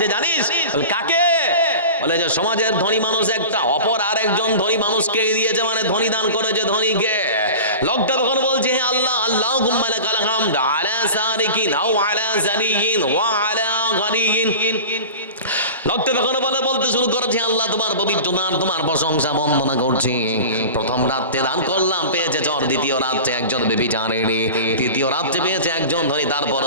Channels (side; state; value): both; inverted; correlation -0.35